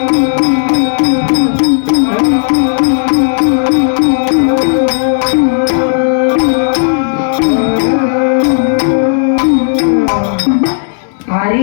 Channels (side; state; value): right; silent; digital silence